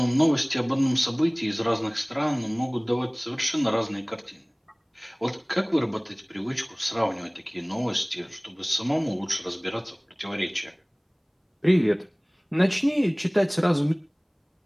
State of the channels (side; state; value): both; identical; correlation 1.00